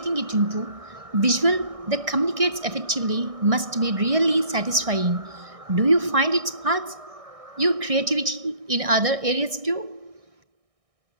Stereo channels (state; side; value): late; left; 1.6 ms